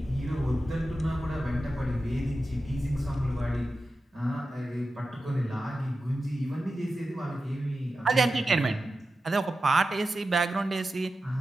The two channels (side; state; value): both; normal; correlation 0.92